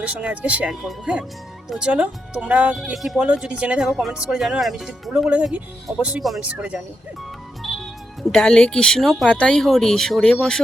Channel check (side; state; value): both; normal; correlation 0.83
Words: সঙ্গে আজকে শেয়ার করবো। হ্যাঁ, তো চলো তোমরা কে কী বলো, যদি জেনে থাকো কমেন্টস করে জানো। আর আমি যদি ভুলও বলে থাকি অবশ্যই কমেন্টস করে জানিও। হ্যাঁ, ডালে কৃষ্ণ পাতাই হরি, সরে বসো